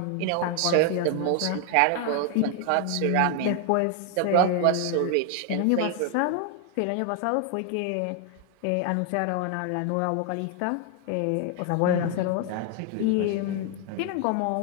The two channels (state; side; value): different; both; correlation 0.00